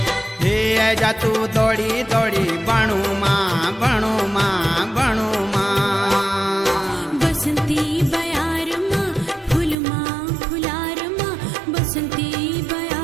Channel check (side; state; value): left; drops out; at 9.8 s